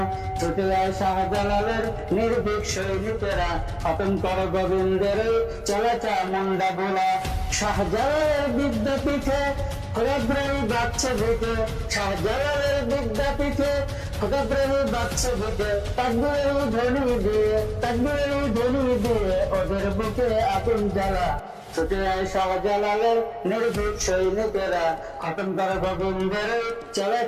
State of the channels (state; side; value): identical; both; correlation 1.00